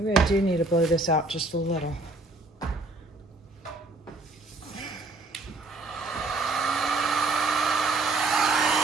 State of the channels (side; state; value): left; quieter; 3.1 dB